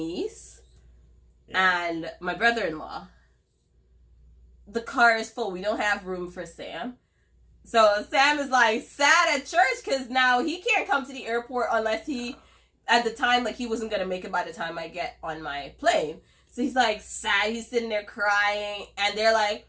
and my brother-in-law. The car is full. We don't have room for Sam. So Sam is like sad at church because now he can't come to the airport unless at the time, like, he wasn't going to make it by the time I get on my plane. So he's like sad. He's sitting there crying, and they're like,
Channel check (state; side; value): identical; both; correlation 1.00